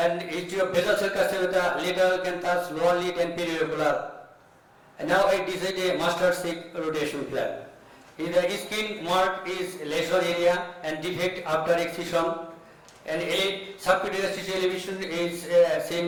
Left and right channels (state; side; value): identical; both; correlation 1.00